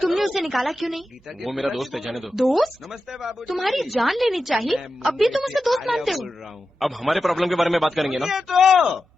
तुमने उसे निकाला क्यों नहीं? वो मेरा दोस्त है, जाने दो। दोस्त? नमस्ते बाबू। तुम्हारी जान लेनी चाहिए, अब भी तुम उसे दोस्त मानते हो? अब हमारे प्रॉब्लम के बारे में बात करेंगे ना? ये तो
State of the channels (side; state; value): both; normal; correlation 0.91